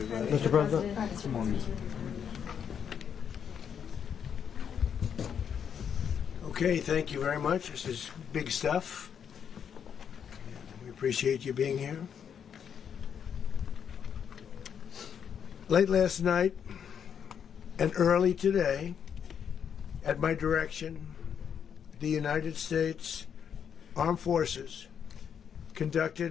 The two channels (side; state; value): right; quieter; 7.8 dB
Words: Mr. President. Come on. Okay, thank you very much. This is big stuff. We appreciate you being here. Late last night and early today, at my direction, the United States Armed Forces